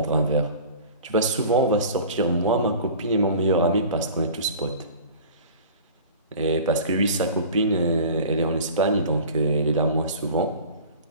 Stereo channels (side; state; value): both; inverted; correlation -0.41